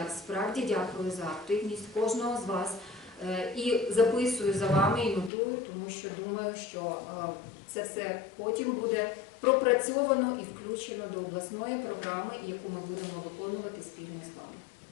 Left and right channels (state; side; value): drops out; right; at 5.3 s